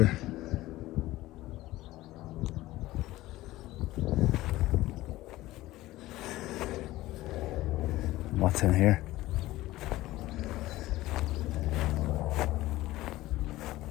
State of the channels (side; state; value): right; quieter; 17.1 dB